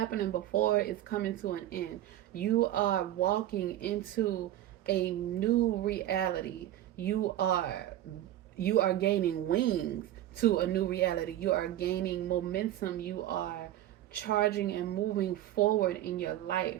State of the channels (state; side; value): quieter; left; 13.2 dB